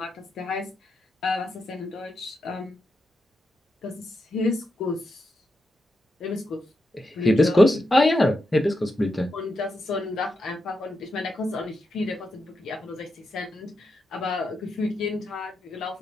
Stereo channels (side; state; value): both; normal; correlation 0.86